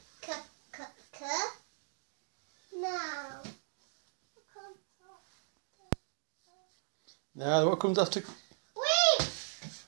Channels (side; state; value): left; silent; digital silence